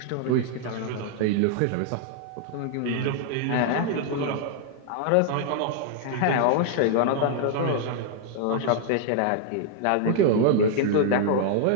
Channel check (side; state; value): both; different; correlation 0.00